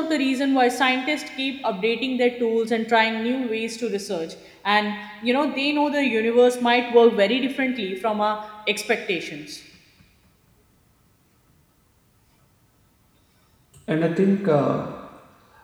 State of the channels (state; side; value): identical; both; correlation 1.00